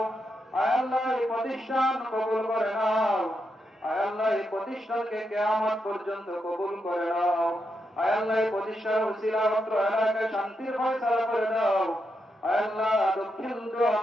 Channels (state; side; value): normal; both; correlation 0.84